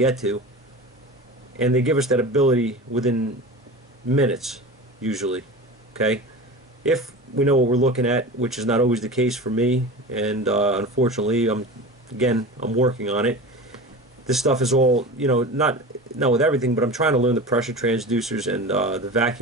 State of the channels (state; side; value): normal; both; correlation 0.32